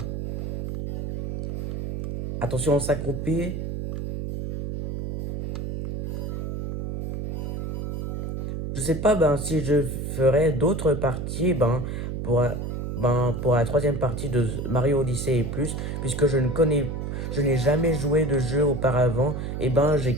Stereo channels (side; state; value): right; noise; hum, 4 dB below the sound